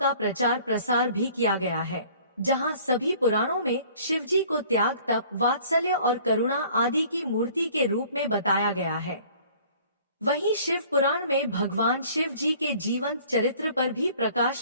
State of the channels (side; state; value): both; inverted; correlation -0.52